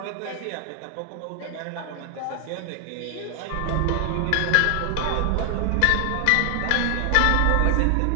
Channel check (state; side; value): different; both; correlation 0.00